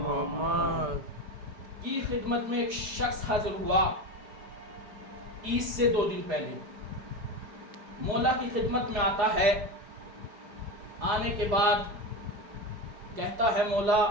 محمد کی خدمت میں ایک شخص حاضر ہوا عید سے 2 دن پہلے. مولا کی خدمت میں آتا ہے، آنے کے بعد کہتا ہے مولا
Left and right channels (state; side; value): late; left; 5.0 ms